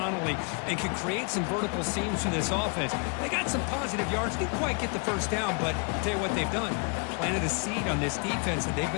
and can create some vertical seams for this offense. They got some positive yards. Didn't quite get the first down, but I'll tell you what they've done. Planted a seed on this defense, and they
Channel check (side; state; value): right; quieter; 36.0 dB